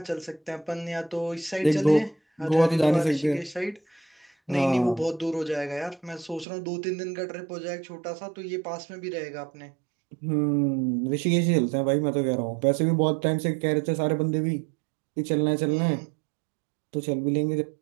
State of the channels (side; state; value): left; drops out; at 6.5 s